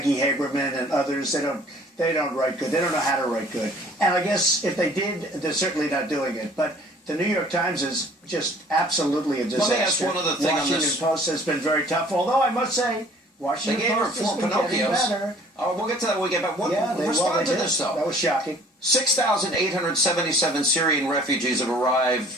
Haberman and others. They don't write good. They don't know how to write good. And I guess if they did, they're certainly not doing it. But the New York Times is just absolutely a disaster. Let me ask one other thing on this. Washington Post has been very tough, although I must say, Washington Post has been getting better. Oh, we'll get to that when we get back. Respond to this, though. That was shocking. 6,877 Syrian refugees have arrived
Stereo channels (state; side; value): normal; both; correlation 0.53